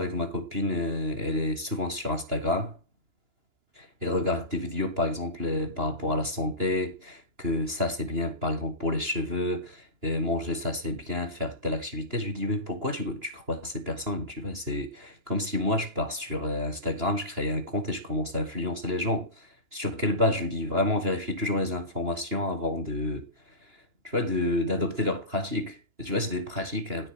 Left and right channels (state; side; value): late; left; 2.9 ms